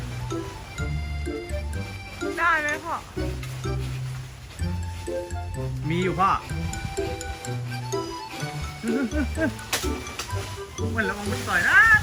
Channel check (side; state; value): both; identical; correlation 1.00